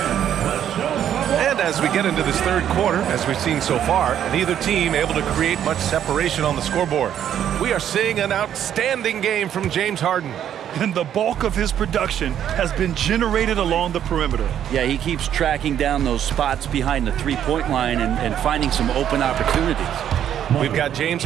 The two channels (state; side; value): quieter; left; 10.0 dB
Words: As we get into this third quarter, as we've seen so far, neither team able to create much separation on the scoreboard. We are seeing an outstanding game from James Harden. And the bulk of his production has been generated along the perimeter. Yeah, he keeps tracking down those spots behind the three-point line and finding some open opportunities. We've got James